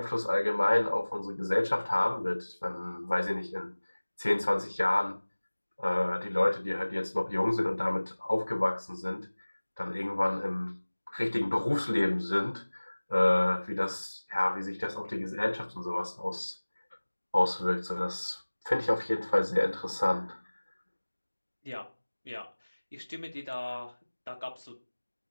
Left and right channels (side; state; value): both; inverted; correlation -1.00